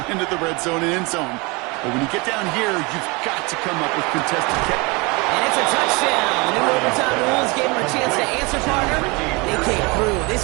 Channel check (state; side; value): quieter; left; 26.8 dB